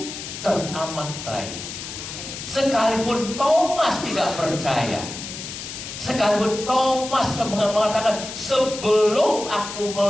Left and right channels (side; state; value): left; noise; hiss, 9 dB below the sound